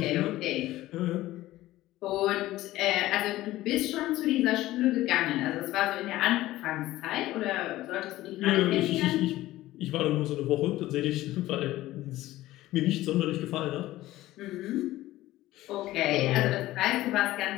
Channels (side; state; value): right; quieter; 16.2 dB